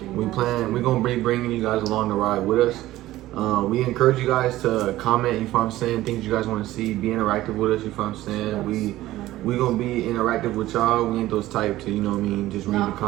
you. We're gonna be bringing you guys along the ride with us. We encourage you guys to comment, you know what I'm saying, things you guys want to see, be interactive with us, you know what I'm saying. We gonna be interactive with y'all. We ain't those type to, you know what I mean, just read the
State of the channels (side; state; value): left; quieter; 15.8 dB